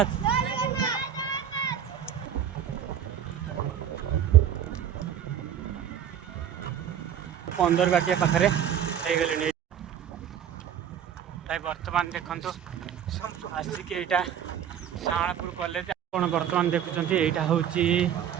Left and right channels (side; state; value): left; quieter; 9.3 dB